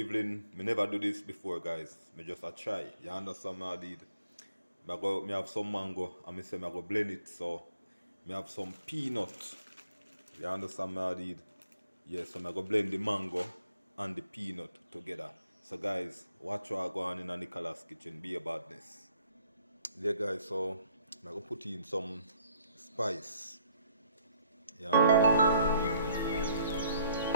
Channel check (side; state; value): both; inverted; correlation -0.65